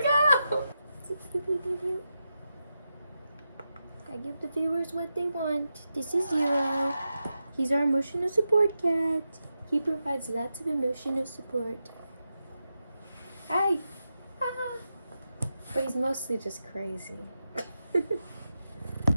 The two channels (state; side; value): inverted; both; correlation -0.89